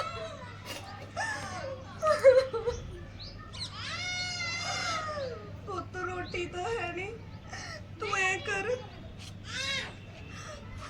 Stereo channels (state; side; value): identical; both; correlation 1.00